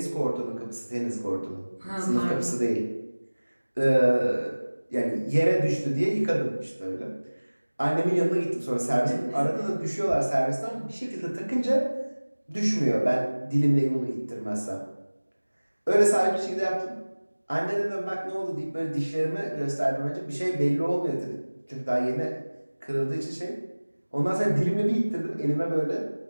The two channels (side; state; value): both; inverted; correlation -1.00